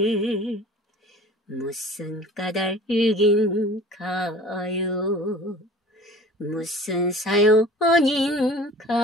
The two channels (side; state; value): both; normal; correlation 0.44